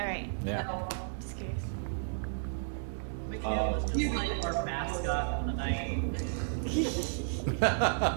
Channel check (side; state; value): left; silent; digital silence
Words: right. Yeah. Just curious. Mikhail was just like our mascot for the night.